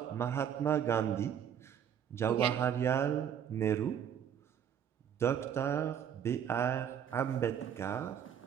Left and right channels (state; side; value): quieter; left; 8.8 dB